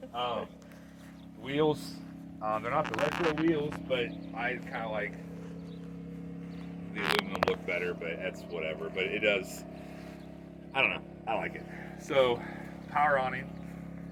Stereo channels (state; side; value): identical; both; correlation 1.00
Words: said. Wheels, they're not the retro wheels, but I kind of like the aluminum look better, but that's whatever. But it does, I don't know, I like it. So, power awning.